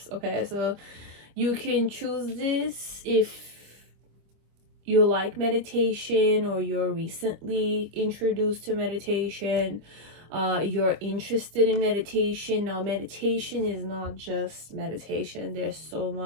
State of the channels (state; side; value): late; left; 25 ms